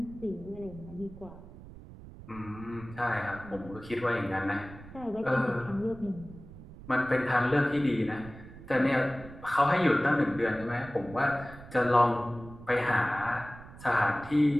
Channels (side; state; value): right; noise; rumble, 17 dB below the sound